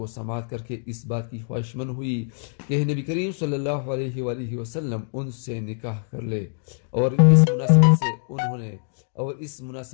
سماعت کر کے اس بات کی خواہش مند ہوئی کہ نبی کریم صلی اللہ علیہ وآلہ وسلم ان سے نکاح کر لے، اور اس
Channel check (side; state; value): right; silent; digital silence